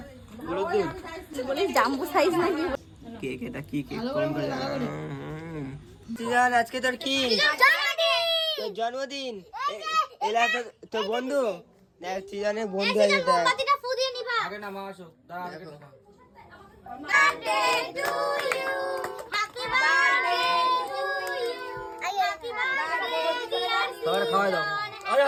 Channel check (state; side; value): identical; both; correlation 1.00